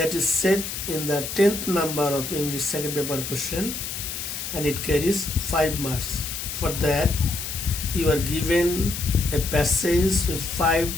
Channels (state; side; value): noise; left; hiss, 6 dB below the sound